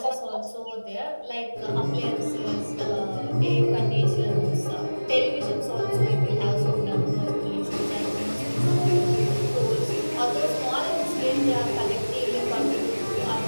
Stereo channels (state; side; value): inverted; both; correlation -1.00